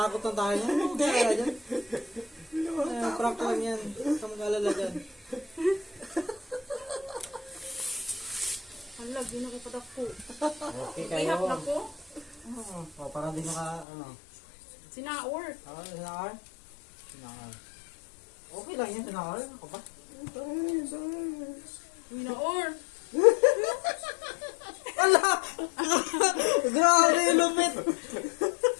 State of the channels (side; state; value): right; drops out; at 13.9 s